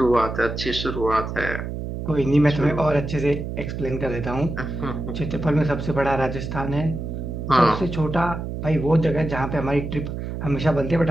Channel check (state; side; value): noise; right; hum, 6 dB below the sound